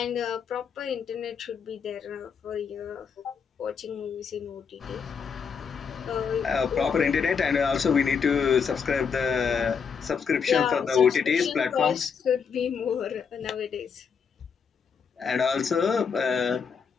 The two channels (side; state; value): right; quieter; 6.3 dB